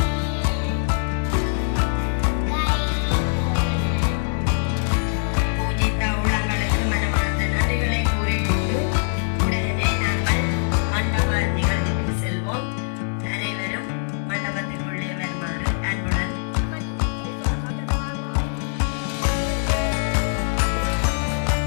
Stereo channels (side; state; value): right; silent; 61 dB below the other